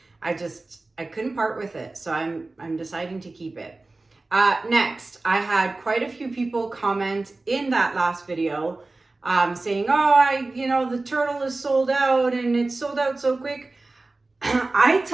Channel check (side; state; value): left; quieter; 3.2 dB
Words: I couldn't part with it, so I'm deciding to keep it. Next, I had quite a few people comment in that last video saying, oh, the turtle is sold out and it's sold out so quick. I